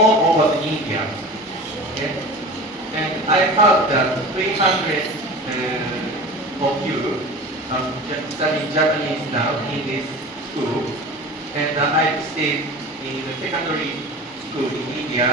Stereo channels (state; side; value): normal; both; correlation 0.36